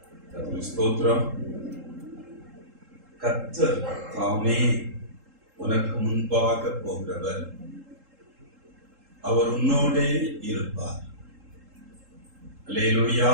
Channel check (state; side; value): late; left; 3.7 ms